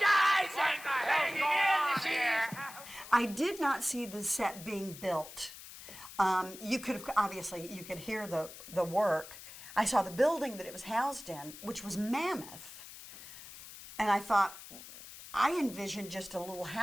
in the sheaves. I did not see the set being built. You could have, obviously, you could hear the work. I saw the building that it was housed in, which was mammoth. And I thought, I envisioned just a little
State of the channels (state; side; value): noise; left; hiss, 15 dB below the sound